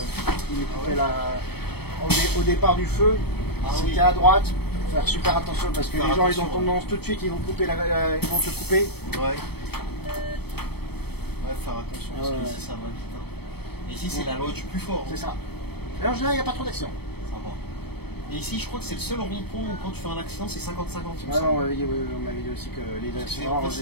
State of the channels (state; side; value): late; right; 0.97 ms